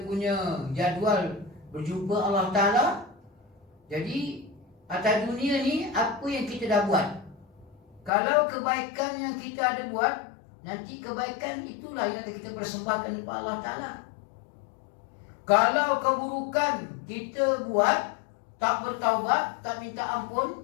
punya jadual berjumpa Allah Ta'ala, jadi atas dunia ni apa yang kita dah buat. Kalau kebaikan yang kita ada buat, nanti kebaikan itulah yang akan kita persembahkan kepada Allah Ta'ala. Kalau keburukan kita buat, tak bertaubat, tak minta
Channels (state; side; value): drops out; right; at 8.1 s